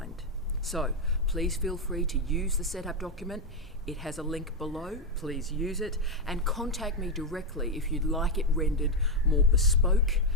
So please feel free to use the setup document. It has a link below, please use it, and contact me directly if you'd like it rendered more bespoke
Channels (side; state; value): both; normal; correlation 0.04